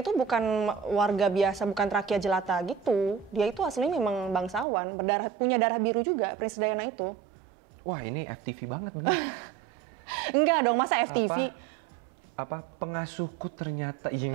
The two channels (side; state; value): left; drops out; at 4.7 s